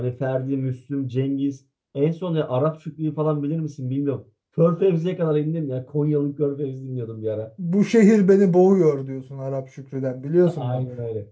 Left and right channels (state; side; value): identical; both; correlation 1.00